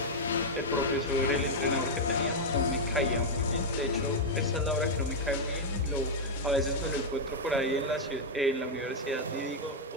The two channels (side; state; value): both; normal; correlation -0.02